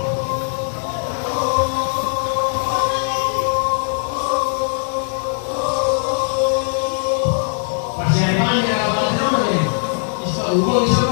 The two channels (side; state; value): right; silent; digital silence